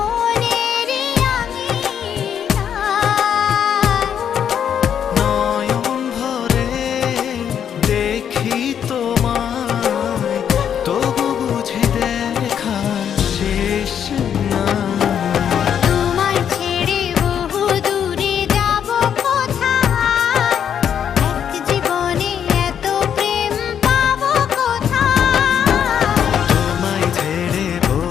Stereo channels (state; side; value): quieter; right; 8.7 dB